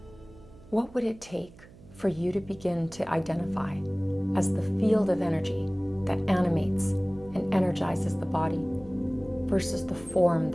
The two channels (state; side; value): noise; right; hum, 22 dB below the sound